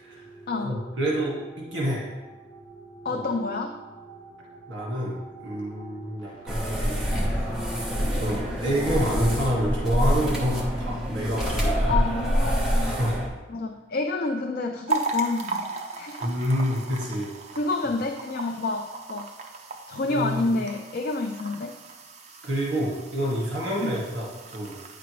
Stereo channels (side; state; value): both; normal; correlation 0.62